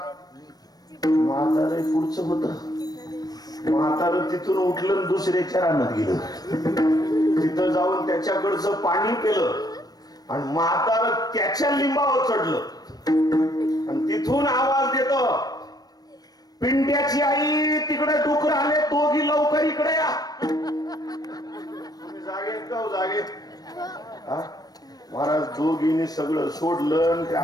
म्हातारे पुढचं होत. म्हातार तिथून उठलं, दुसऱ्याच्या रानात गेलं, तिथं जाऊन त्याच्याकडचं पाणी पिलं आणि म्हातार त्याच्या लिंबावर चढलं आणि तिथून आवाज देतो, पिंट्याची आई तिकडे डुकर आले, दोघी लवकर इकडे या. तुम्ही जागेत का हो, जागेत? हा? महाराज दोघींनी सगळं सोडलं आणि त्या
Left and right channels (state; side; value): late; right; 0.19 ms